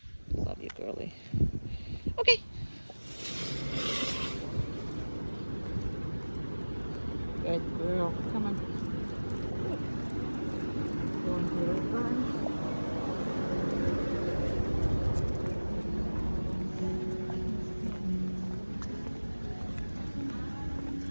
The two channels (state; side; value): inverted; both; correlation -1.00